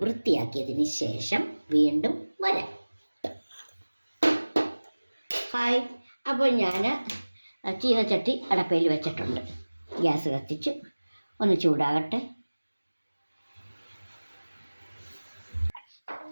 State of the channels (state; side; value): inverted; both; correlation -1.00